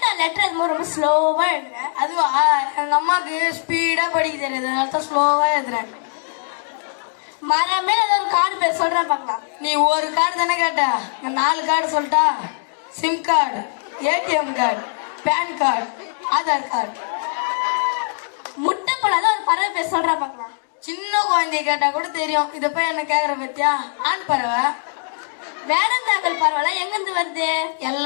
லெட்டர் அது ரொம்ப ஸ்லோவா எழுதுறேன். அதுவா எங்க அம்மாக்கு ஸ்பீடா படிக்க தெரியாது, அதனால தான் ஸ்லோவா எழுதுறேன். மரமே ஏதாவது ஒரு கார்டு பேர் சொல்றேன் பார்க்கலாம். நீ ஒரு கார்டு தானே கேட்ட, நான் 4 கார்டு சொல்லிட்டா. SIM card, ATM card, PAN card, Aadhaar card. முட்டை போடாத ஒரு பறவை பேர் சொல்றேன் பார்க்கலாம். சின்ன குழந்தைய கேட்டா கூட தெரியும். இத போய் என்ன கேக்குற பத்தியா? ஆண் பறவை. வேடந்தாங்கல் பறவை எங்க இருந்து வருது?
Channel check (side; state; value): right; silent; digital silence